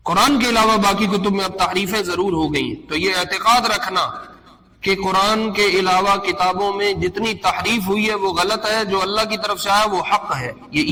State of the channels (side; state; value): both; identical; correlation 1.00